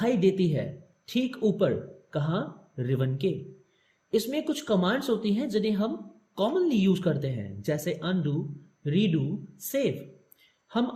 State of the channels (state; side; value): identical; both; correlation 1.00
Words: देती है ठीक ऊपर, कहां, रिवन के। इसमें कुछ कमांड्स होती हैं जिन्हें हम कॉमनली यूज करते हैं, जैसे अनडू, रीडू, सेव।